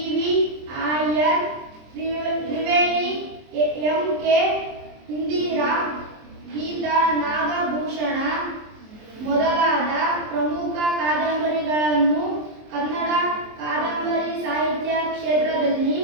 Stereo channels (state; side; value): late; left; 23 ms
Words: Iyer, Triveni, MK Indira, Geetha Nagabhushana ಮೊದಲಾದ ಪ್ರಮುಖ ಕಾದಂಬರಿಗಳನ್ನು ಕನ್ನಡ ಕಾದಂಬರಿ